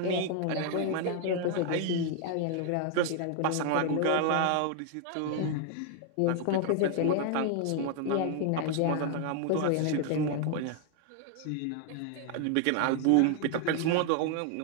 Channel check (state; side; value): different; both; correlation 0.00